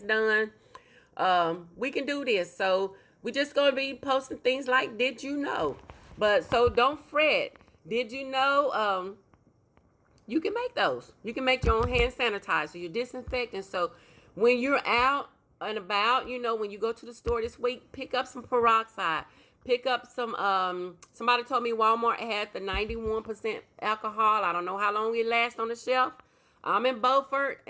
done, we can do this. So we just going to be posting things like, did you know? But so don't fret. Did you know? You can make those. You can make your own hand sanitizer, your disinfectant. So when you're out and about, when you go to the store this week, pick up some peroxide. Pick up some, somebody told me Walmart had the 91% alcohol. I don't know how long it lasts on the shelf. I'm in Beaufort,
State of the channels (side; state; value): both; identical; correlation 1.00